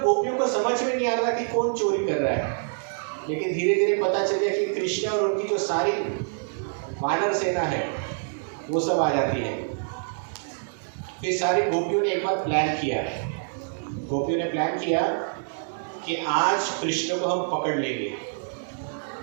को समझ में नहीं आ रहा कि कौन चोरी कर रहा है, लेकिन धीरे धीरे पता चल गया कि कृष्ण और उनकी जो सारी वानर सेना है वो सब आ जाती है। फिर सारी गोपियों ने एक बार प्लान किया, गोपियों ने प्लान किया कि आज कृष्ण को हम पकड़ लेंगे।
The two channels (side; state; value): left; silent; digital silence